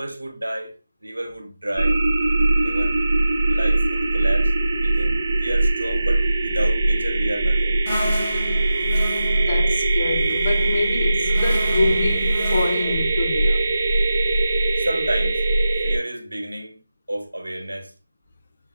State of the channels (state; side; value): inverted; both; correlation -0.92